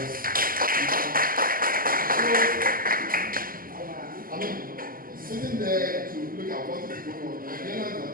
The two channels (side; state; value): left; late; 0.42 ms